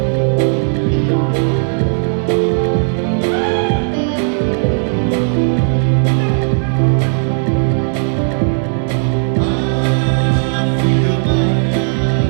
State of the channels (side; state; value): left; silent; digital silence